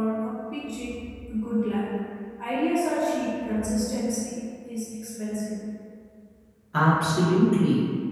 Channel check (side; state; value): both; identical; correlation 1.00